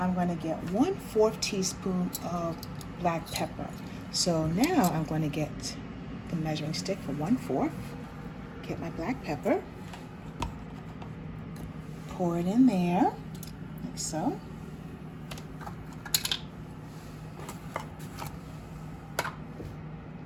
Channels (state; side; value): identical; both; correlation 1.00